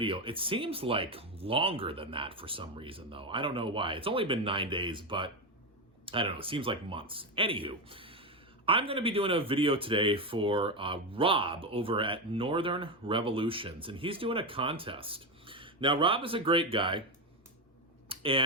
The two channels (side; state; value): both; normal; correlation 0.12